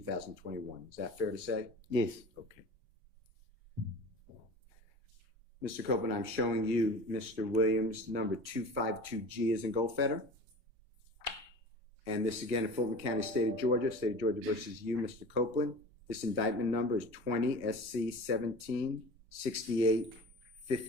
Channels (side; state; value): left; late; 2.4 ms